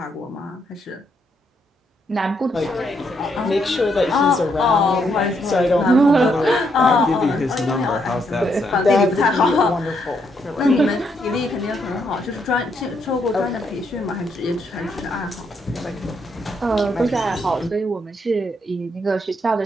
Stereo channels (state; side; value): normal; both; correlation 0.76